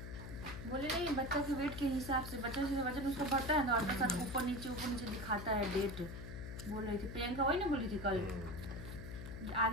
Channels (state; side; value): noise; left; hum, 9 dB below the sound